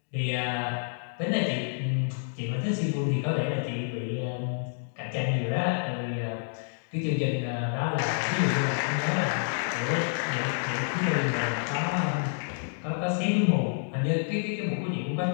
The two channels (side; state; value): right; silent; digital silence